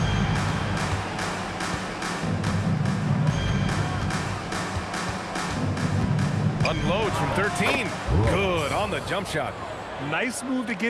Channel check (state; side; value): identical; both; correlation 1.00